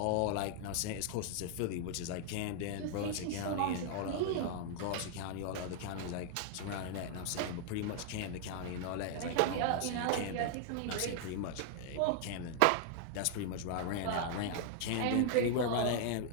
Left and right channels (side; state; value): both; different; correlation 0.00